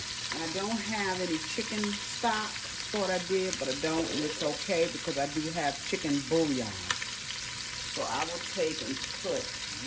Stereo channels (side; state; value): both; identical; correlation 1.00